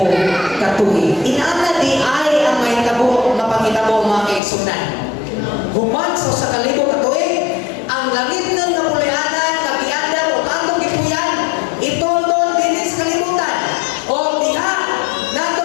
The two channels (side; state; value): right; drops out; at 4.4 s